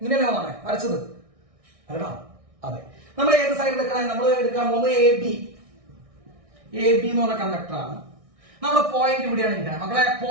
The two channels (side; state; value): left; late; 1.6 ms